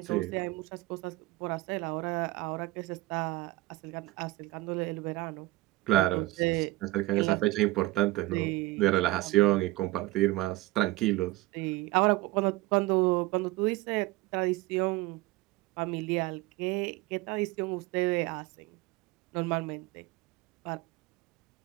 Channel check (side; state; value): left; quieter; 19.6 dB